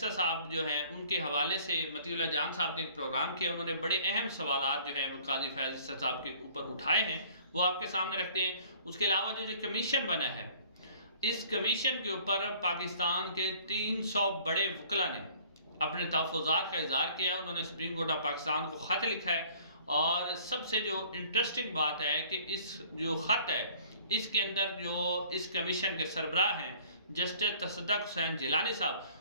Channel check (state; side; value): inverted; both; correlation -0.53